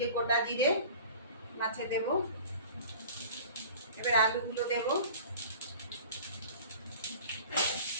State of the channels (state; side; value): inverted; both; correlation -0.42